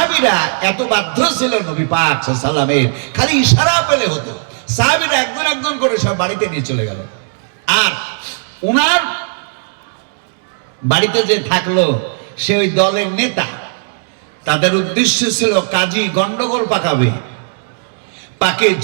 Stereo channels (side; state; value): left; silent; digital silence